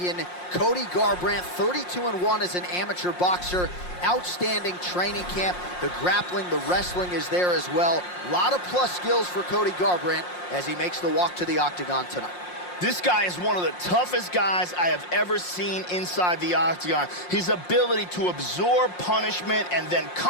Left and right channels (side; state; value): right; late; 5.6 ms